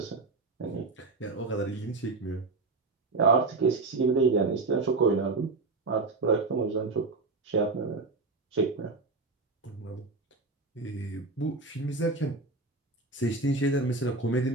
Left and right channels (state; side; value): quieter; left; 3.6 dB